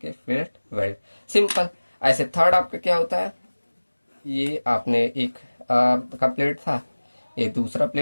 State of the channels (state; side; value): inverted; both; correlation -1.00